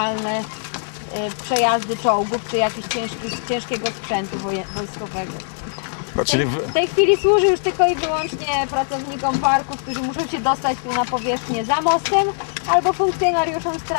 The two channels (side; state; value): right; silent; digital silence